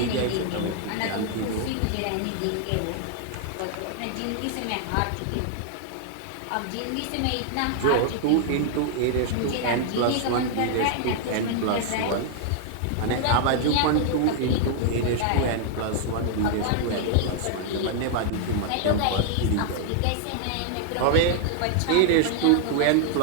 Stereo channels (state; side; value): different; both; correlation 0.00